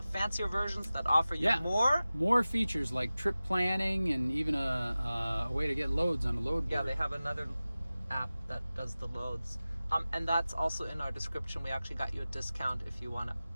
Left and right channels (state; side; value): inverted; both; correlation -0.97